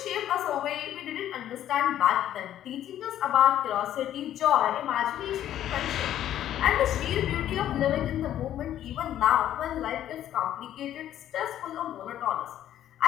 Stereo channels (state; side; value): quieter; right; 11.6 dB